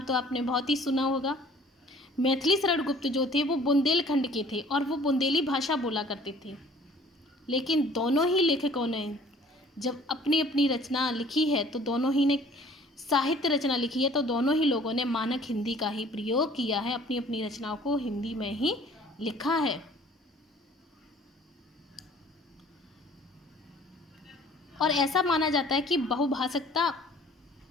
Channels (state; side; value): normal; both; correlation 0.53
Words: तो आपने बहुत ही सुना होगा। मैथिली शरण गुप्त जो थे वो बुंदेलखंड के थे और वो बुंदेली भाषा बोला करते थे। लेकिन दोनों ही लेखकों ने जब अपनी अपनी रचना लिखी है, तो दोनों ही ने साहित्य रचना लिखी है, तो दोनों ही लोगों ने मानक हिंदी का ही प्रयोग किया है, अपनी अपनी रचनाओं को हिंदी में ही लिखा है। और ऐसा माना जाता है कि बहुभाषिकता